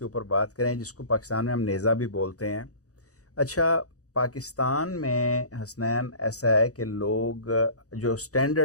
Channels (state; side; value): late; right; 0.66 ms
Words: اوپر بات کریں، جس کو پاکستان میں ہم نیزہ بھی بولتے ہیں۔ اچھا، پاکستان میں حسنین ایسا ہے کہ لوگ جو